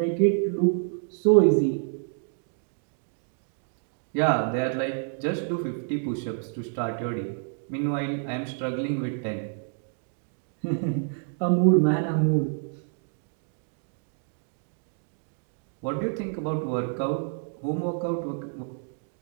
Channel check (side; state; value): left; silent; digital silence